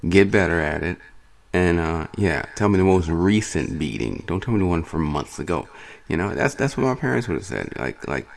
Get better at it. And, tell me the most recent beating. Don't tell me the one from months ago. That's what my parents would have said. Like,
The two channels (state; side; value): identical; both; correlation 1.00